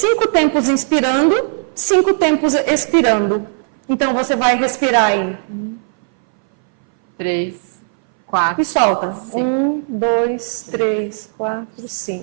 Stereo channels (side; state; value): left; silent; 62 dB below the other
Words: tempos inspirando, 5 tempos expirando. Então, você vai respirar em 3, 4. E solta. 5. 1, 2, 3, 4,